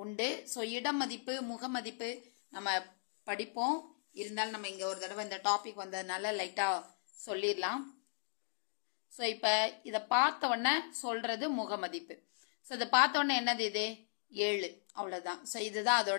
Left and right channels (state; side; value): silent; right; digital silence